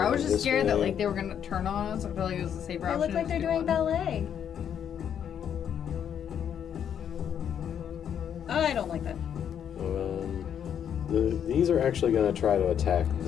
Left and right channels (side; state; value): right; quieter; 8.7 dB